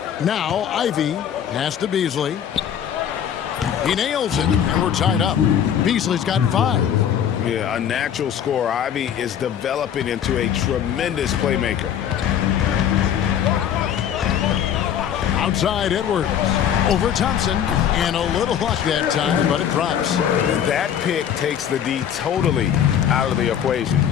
Now Ivy pass to Beasley. He nails it, and we're tied up. Beasley's got 5. Yeah, a natural scorer. Ivy is developing into a tremendous playmaker. Outside Edwards. Over Thompson. And a little luck that time, but it drops. That pick takes the D totally out of the equation.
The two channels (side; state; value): right; quieter; 9.2 dB